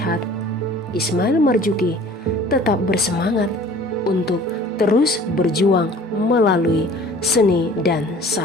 Ismail Marzuki tetap bersemangat untuk terus berjuang melalui seni dan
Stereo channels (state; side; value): normal; both; correlation 0.48